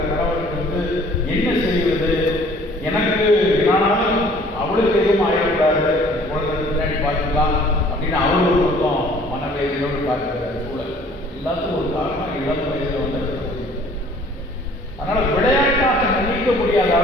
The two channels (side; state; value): both; normal; correlation 0.54